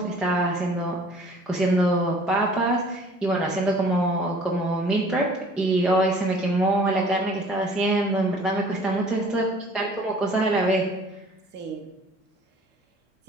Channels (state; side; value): normal; both; correlation 0.52